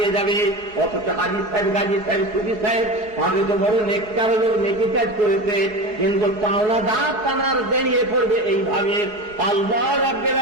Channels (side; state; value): left; late; 4.7 ms